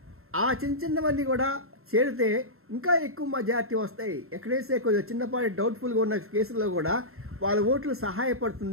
ఆ చిన్నవన్నీ కూడా చేరితే ఇంకా ఎక్కువ మెజార్టీ వస్తాయి. ఎక్కడైతే కొంచెం చిన్నపాటి డౌట్ఫుల్గా ఉన్న కేసుల్లో కూడా వాళ్ళ ఓట్లు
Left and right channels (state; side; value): late; left; 0.62 ms